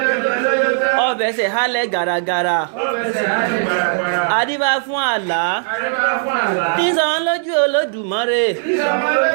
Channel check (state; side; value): silent; left; digital silence